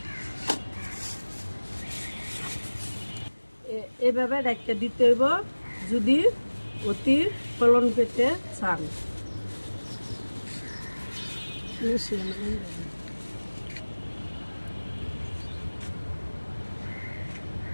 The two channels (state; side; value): inverted; both; correlation -1.00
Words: এভাবে ডাক্তার দিতে হইব যদি অতি ফলন পেতে চান।